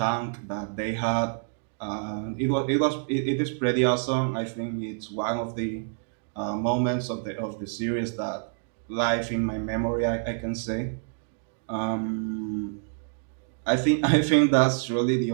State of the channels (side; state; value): left; silent; digital silence